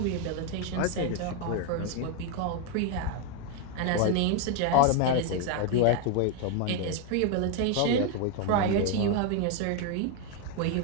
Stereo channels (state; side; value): different; both; correlation 0.01